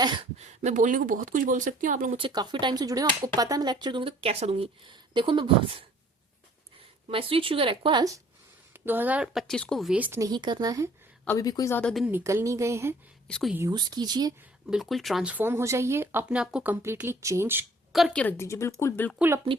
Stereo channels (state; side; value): normal; both; correlation 0.55